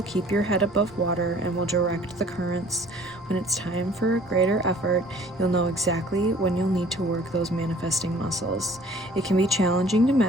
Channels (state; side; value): normal; both; correlation 0.53